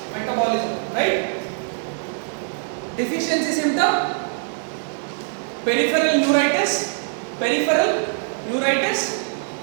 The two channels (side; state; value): left; silent; digital silence